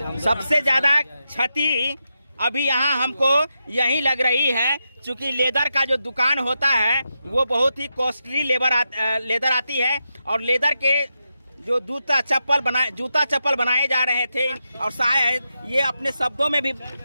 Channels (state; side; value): inverted; both; correlation -0.87